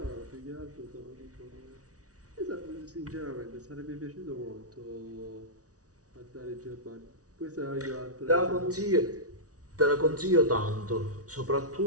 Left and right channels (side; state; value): left; late; 0.67 ms